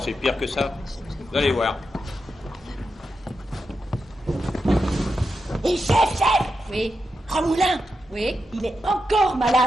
c'est pire que ça. Vous allez voir. Et chef! Oui, Ramoulin, oui. il est encore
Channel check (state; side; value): normal; both; correlation 0.87